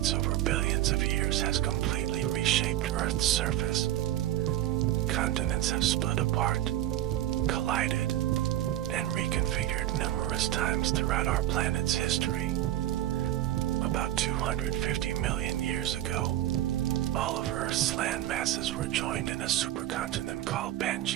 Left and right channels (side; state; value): left; quieter; 13.4 dB